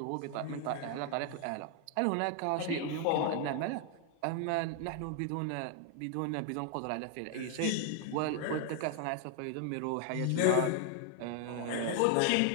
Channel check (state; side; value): different; both; correlation 0.00